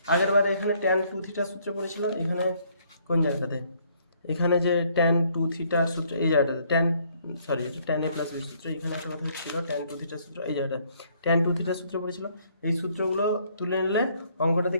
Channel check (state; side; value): inverted; both; correlation -0.66